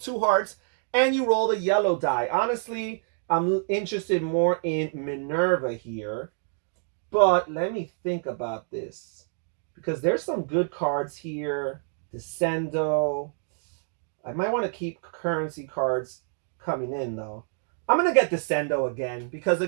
hearts, and you roll the yellow die. Honestly, I'm interested more in Minerva here, but let me think about this, because there's some good cards here. Descendo. I might want to keep currency cards coming in though. I'm going to get Descendo again, because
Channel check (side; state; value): left; silent; digital silence